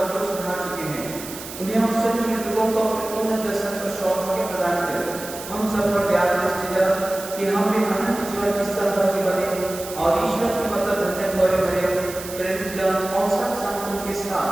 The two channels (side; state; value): right; noise; hiss, 12 dB below the sound